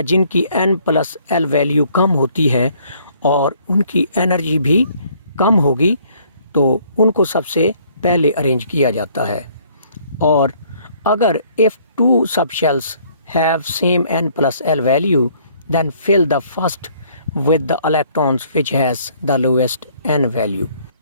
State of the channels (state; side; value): inverted; both; correlation -0.61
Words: जिनकी N+L वैल्यू कम होती है और उनकी एनर्जी भी कम होगी, तो उनको सबसे पहले अरेंज किया जाता है। और अगर if two subshells have same N+L value, then fill the first with the electrons which has the lowest N value।